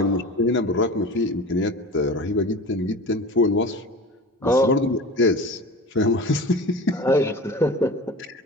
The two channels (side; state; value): both; normal; correlation 0.34